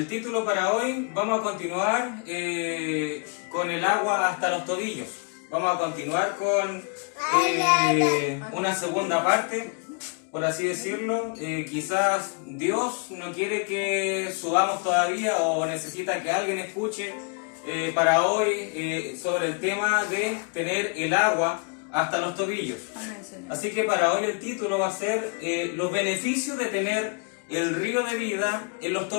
título para hoy, vamos a continuar con el agua hasta los tobillos. Vamos a continuar con una segunda parte, por así decirlo. Quizás Dios no quiere que subamos todavía o necesita que alguien escuche para hoy sobre el tema de tener el agua hasta los tobillos. Así que para hoy el título va a ser los beneficios de tener el río de vida en los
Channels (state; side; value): quieter; right; 36.8 dB